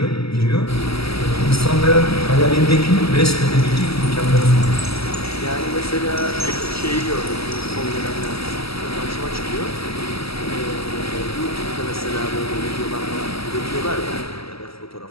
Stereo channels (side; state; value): right; late; 0.76 ms